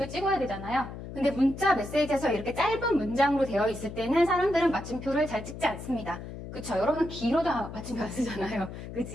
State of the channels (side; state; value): left; noise; hum, 10 dB below the sound